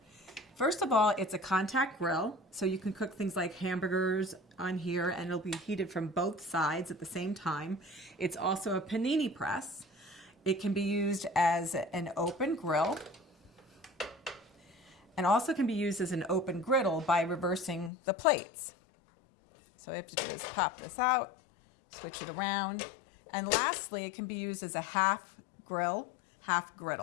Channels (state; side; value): drops out; right; at 17.9 s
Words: First of all, it's a contact grill, so you can cook things like hamburgers on here and it'll be heated from both sides at the same time. It's also a panini press. It can be used as an open grill and also can be used as an open griddle by reversing the plates. So I have to just pop this out, switch it around. And lastly, it can be used as a half grill, half